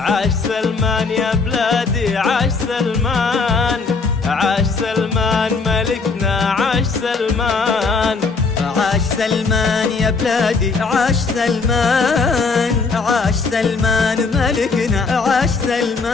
عاش سلمان يا بلادي عاش سلمان، عاش سلمان ملكنا عاش سلمان. عاش سلمان يا بلادي عاش سلمان، عاش سلمان ملكنا عاش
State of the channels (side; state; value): right; quieter; 4.4 dB